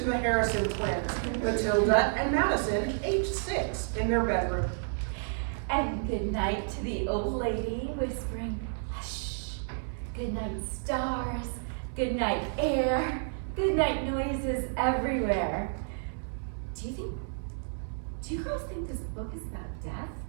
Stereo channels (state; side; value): silent; left; 57 dB below the other